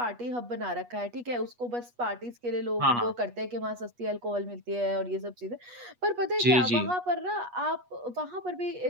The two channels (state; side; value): late; left; 8.3 ms